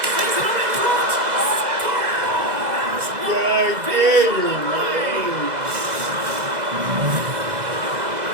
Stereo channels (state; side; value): late; left; 2.0 ms